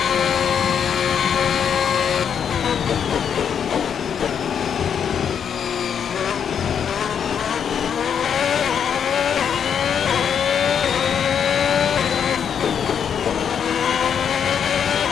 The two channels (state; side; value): quieter; right; 7.8 dB